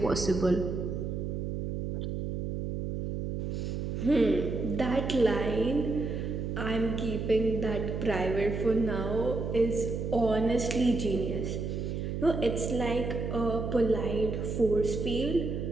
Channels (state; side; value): noise; right; hum, 3 dB below the sound